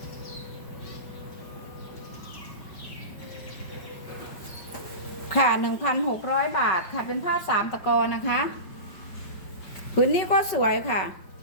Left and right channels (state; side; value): late; right; 5.2 ms